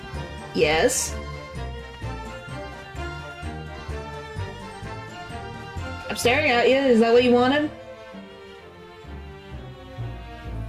Yes? I'm staring at you. Is that what you wanted?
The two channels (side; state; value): both; identical; correlation 1.00